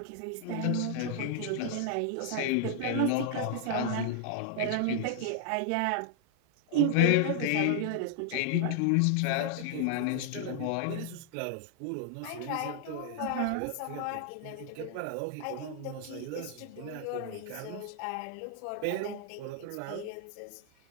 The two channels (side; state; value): both; different; correlation 0.00